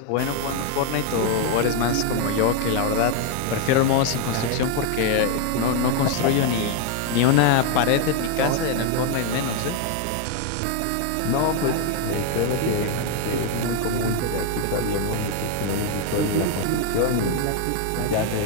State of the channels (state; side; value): different; both; correlation 0.01